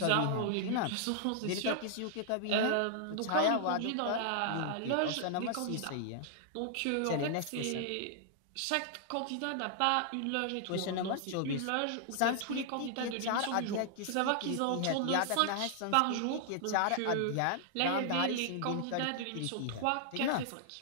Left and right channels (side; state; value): both; different; correlation -0.01